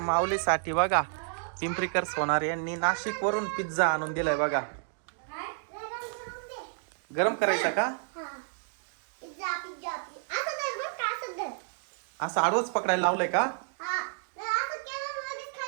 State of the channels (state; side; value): silent; left; digital silence